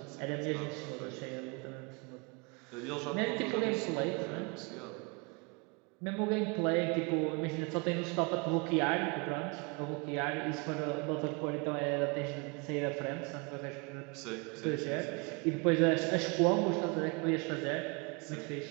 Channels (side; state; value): left; quieter; 31.3 dB